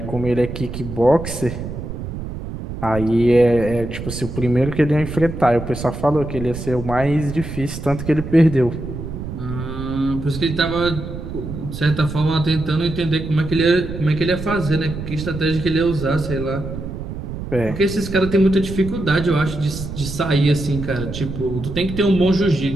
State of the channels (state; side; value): noise; right; rumble, 8 dB below the sound